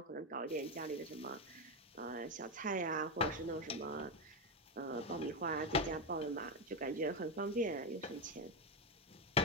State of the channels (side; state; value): both; normal; correlation 0.08